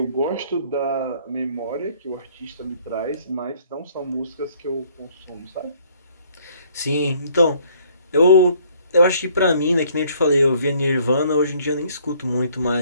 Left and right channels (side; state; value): both; inverted; correlation -0.61